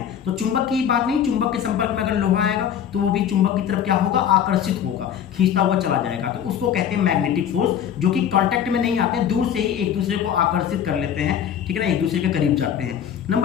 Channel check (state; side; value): quieter; right; 9.1 dB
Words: तो चुंबक की बात नहीं, चुंबक के संपर्क में अगर लोहा आएगा तो वो भी चुंबक की तरफ क्या होगा, आकर्षित होगा, खींचता हुआ चला जाएगा। तो उसको कहते हैं मैग्नेटिक फोर्स, जो कि कांटेक्ट में नहीं आते हैं, दूर से ही एक दूसरे को आकर्षित कर लेते हैं, ठीक है ना, एक दूसरे के करीब जाते हैं।